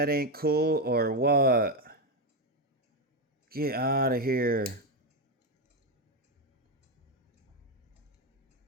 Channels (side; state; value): both; normal; correlation 0.08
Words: ain't cool or what? Get out of here.